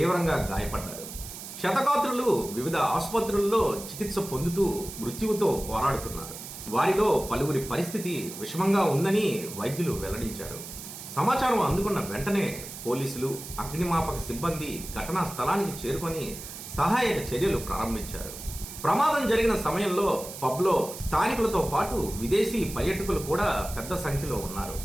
గాయపడ్డారు. శతగాత్రులు వివిధ ఆసుపత్రుల్లో చికిత్స పొందుతూ మృత్యువుతో పోరాడుతున్నారు. వారిలో పలువురి పరిస్థితి విషమంగా ఉందని వైద్యులు వెల్లడించారు. సమాచారం అందుకున్న వెంటనే పోలీసులు, అగ్నిమాపక సిబ్బంది ఘటనా స్థలానికి చేరుకొని సహాయక చర్యలు ప్రారంభించారు. ప్రమాదం జరిగిన సమయంలో పబ్లో స్థానికులతో పాటు విదేశీ పర్యాటకులు కూడా పెద్ద సంఖ్యలో ఉన్నారు.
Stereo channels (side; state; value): right; noise; hiss, 11 dB below the sound